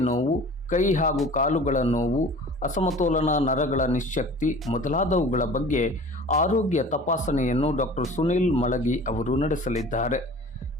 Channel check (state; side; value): normal; both; correlation 0.42